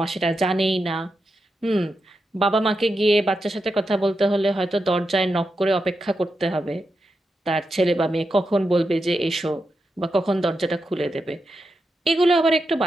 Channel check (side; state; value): both; normal; correlation 0.87